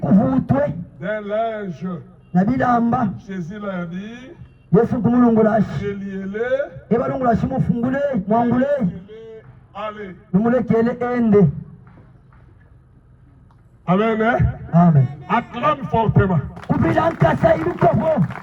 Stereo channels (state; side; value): identical; both; correlation 1.00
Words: d'un linge. na bilamba. Jésus leur dit, Yesu kumulungulashi reliez-les, ebalungulashi mufungule mwangule allez. numulekele ende. Amen. Hein? Amen. Acclame fortement. Kubila nkasa ibikofo.